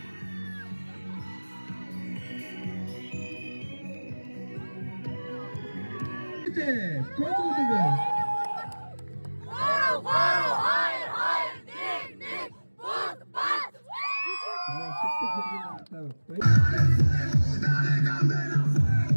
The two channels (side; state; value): both; inverted; correlation -1.00